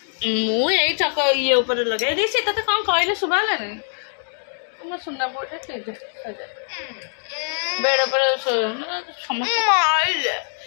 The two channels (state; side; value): silent; right; digital silence